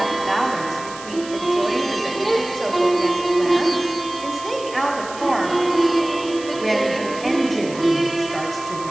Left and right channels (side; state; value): right; noise; hiss, 15 dB below the sound